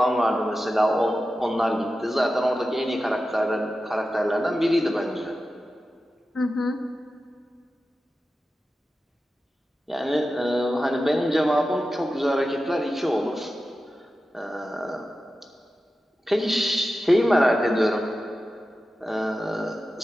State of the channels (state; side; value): normal; both; correlation 0.93